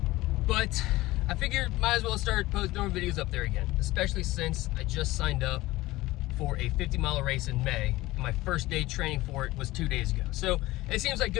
but I figured might as well start posting more videos up there again, especially since I just signed up for a 50-mile race in May, and my first day training for it was 2 days ago. So it seems like a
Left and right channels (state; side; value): quieter; right; 18.5 dB